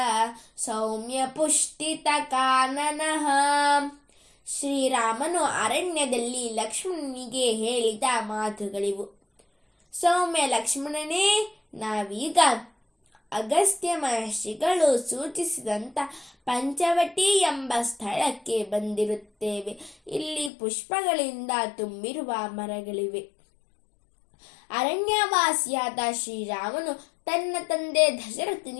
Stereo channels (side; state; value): right; drops out; at 20.5 s